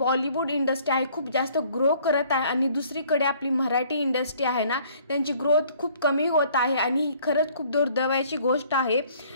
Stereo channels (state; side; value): inverted; both; correlation -0.58